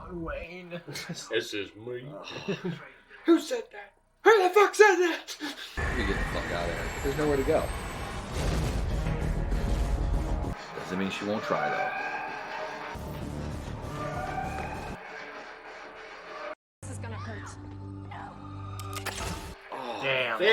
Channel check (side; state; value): both; identical; correlation 1.00